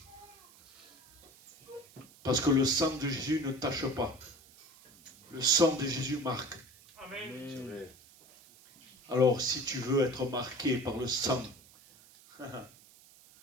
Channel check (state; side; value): noise; right; hiss, 25 dB below the sound